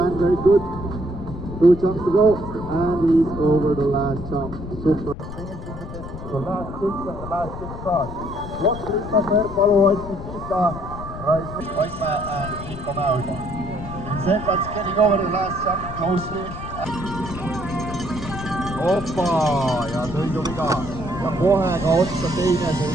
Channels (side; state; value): left; noise; rumble, 10 dB below the sound